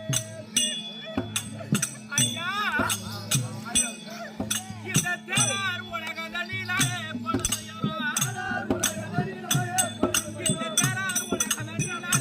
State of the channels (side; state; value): both; identical; correlation 1.00